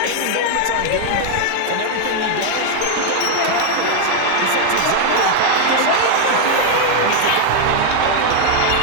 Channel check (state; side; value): different; both; correlation 0.00